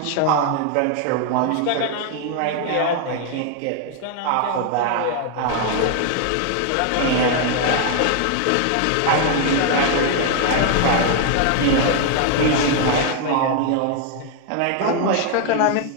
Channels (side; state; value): both; different; correlation 0.00